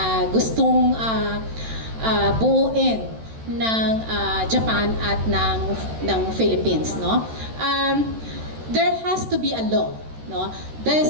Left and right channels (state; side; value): late; left; 13 ms